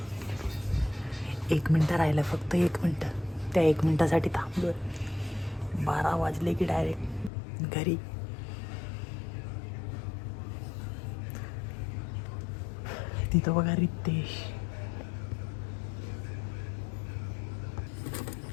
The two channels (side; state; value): right; drops out; at 7.3 s